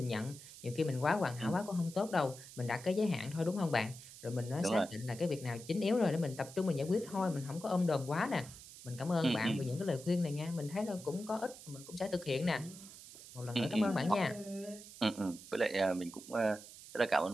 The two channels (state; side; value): noise; right; hiss, 16 dB below the sound